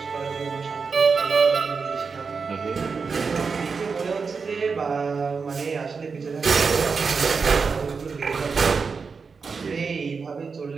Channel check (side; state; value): left; quieter; 5.1 dB